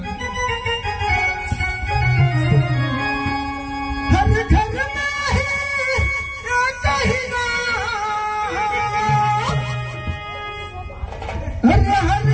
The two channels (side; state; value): both; identical; correlation 1.00